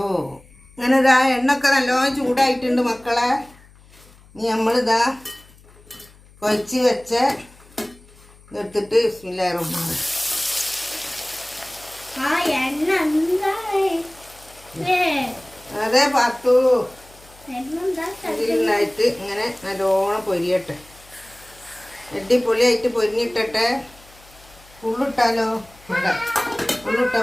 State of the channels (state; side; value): noise; left; hum, 25 dB below the sound